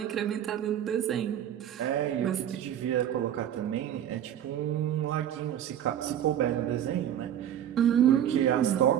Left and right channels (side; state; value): left; quieter; 10.3 dB